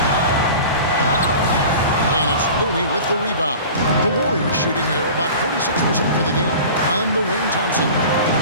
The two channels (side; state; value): both; inverted; correlation -0.39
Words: Looney with the rebound. The Warriors shooting here about 46% for the game. On the wing, Thompson.